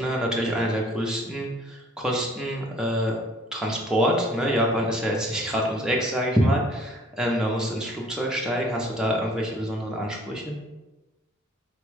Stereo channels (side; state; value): both; normal; correlation 0.55